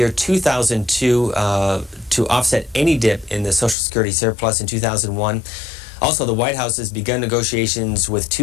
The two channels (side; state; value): right; drops out; at 3.8 s